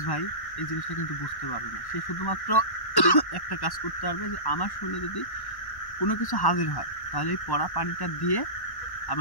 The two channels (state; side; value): late; right; 1.1 ms